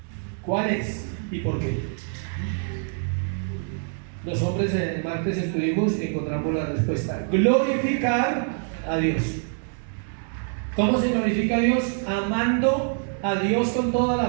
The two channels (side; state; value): left; silent; 62 dB below the other